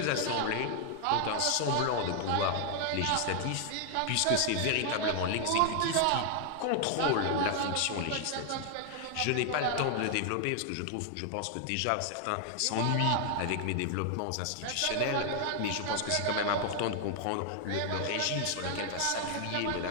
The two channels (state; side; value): different; both; correlation 0.00